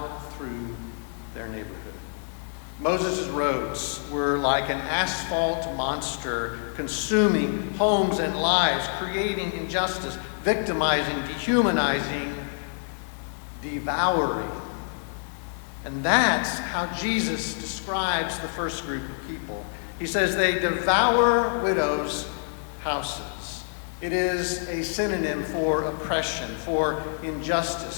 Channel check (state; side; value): silent; right; 60 dB below the other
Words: through their neighborhood. Moses' roads were like an asphalt monster, consuming homes and lives, creating injustice, victimizing, dehumanizing, devouring. And that's how Jesus describes the first group of people. He says they devour widows' houses. It is a synonym for oppression, for